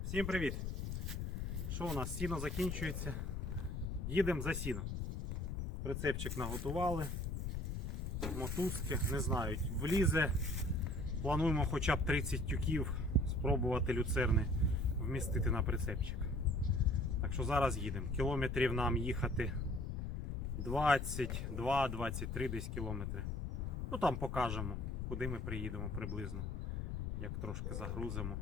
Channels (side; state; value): left; noise; rumble, 2 dB below the sound